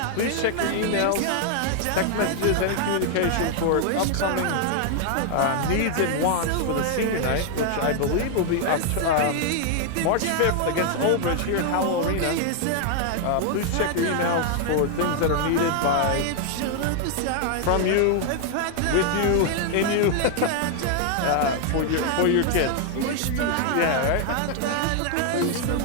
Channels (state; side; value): different; both; correlation 0.00